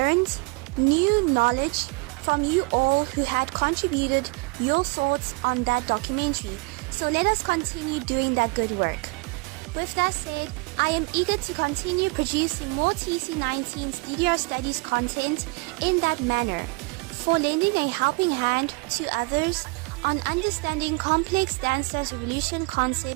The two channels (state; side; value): quieter; left; 27.9 dB